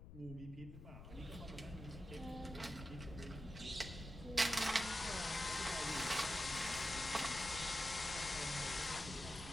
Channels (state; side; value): noise; left; rumble, 13 dB below the sound